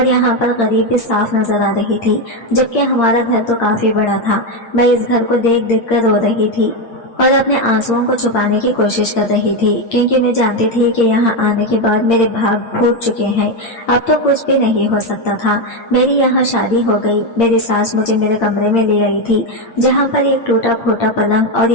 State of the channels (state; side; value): late; right; 8.7 ms